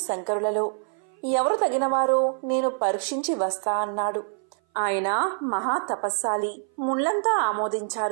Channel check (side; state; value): left; silent; 57 dB below the other